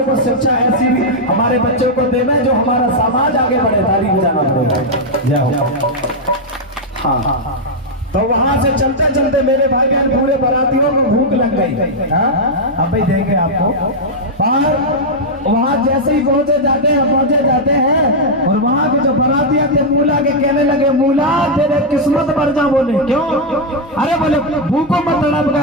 शिक्षा ऐसी भी हमारे बच्चों को देवे जो हमारा समाज आगे बढ़े। ताली बजाना पड़ेगा। जय हो। हाँ, तो वहां से चलते चलते मेरे भाई बहन पूरे बारातियों को भूख लग गई। अब भाई देंगे आपको, पर वहां जैसे ही पहुंचे जाते हैं और वहां के जो बारातिया थे मूला के कहने लगे, मूला तेरे किस्मत पर जा। बोले क्यों? अरे बोले भूखों मत तड़प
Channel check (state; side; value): normal; both; correlation -0.02